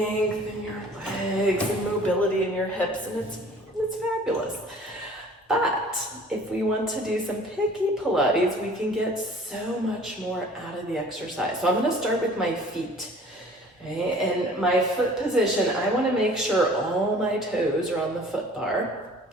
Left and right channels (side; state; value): both; normal; correlation 0.49